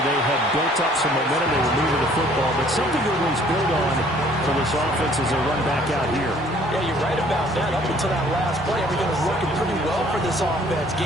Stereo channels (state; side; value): normal; both; correlation 0.58